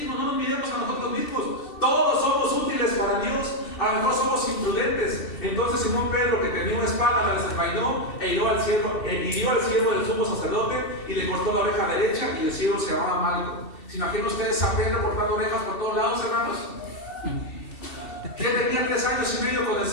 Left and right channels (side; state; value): right; late; 2.7 ms